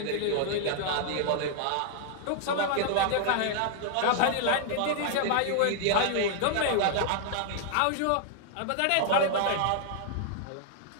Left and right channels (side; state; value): both; different; correlation -0.01